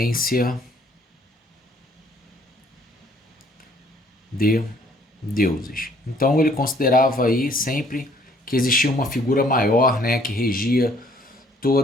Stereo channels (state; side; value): normal; both; correlation 0.61